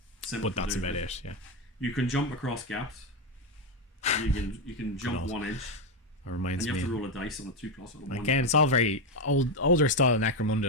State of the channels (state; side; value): normal; both; correlation 0.08